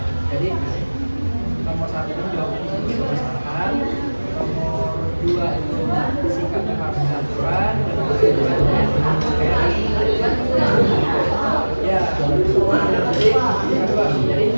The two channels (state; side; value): inverted; both; correlation -1.00